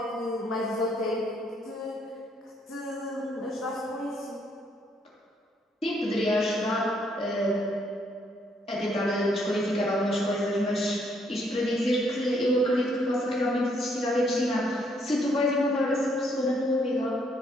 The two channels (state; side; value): normal; both; correlation 0.70